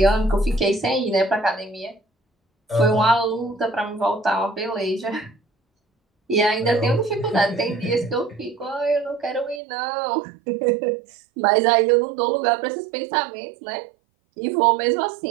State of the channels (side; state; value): left; drops out; at 9.6 s